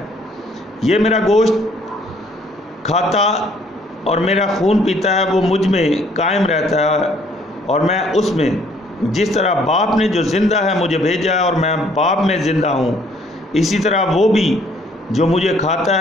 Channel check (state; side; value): normal; both; correlation 0.62